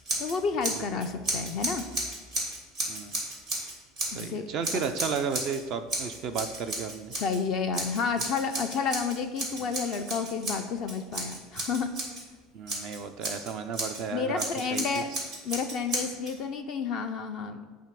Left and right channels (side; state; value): both; normal; correlation 0.32